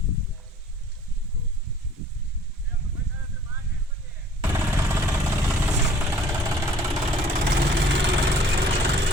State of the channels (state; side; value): normal; both; correlation 0.53